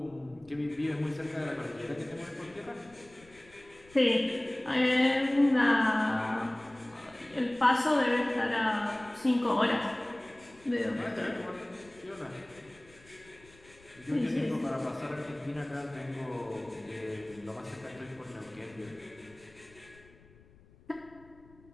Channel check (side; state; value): left; noise; rumble, 26 dB below the sound